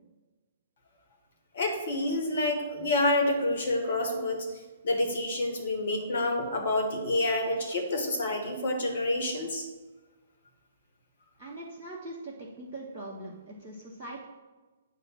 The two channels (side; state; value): both; inverted; correlation -0.59